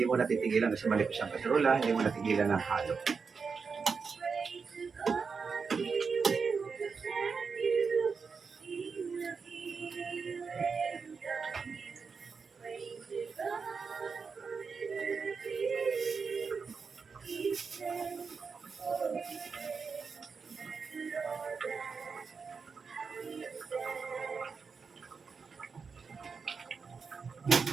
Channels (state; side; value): quieter; left; 5.3 dB